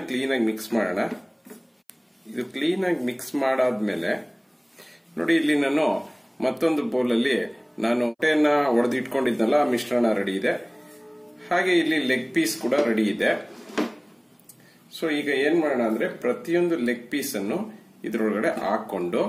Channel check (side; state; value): both; identical; correlation 1.00